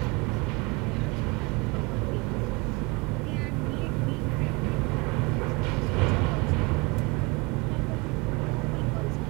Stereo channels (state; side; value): quieter; left; 26.3 dB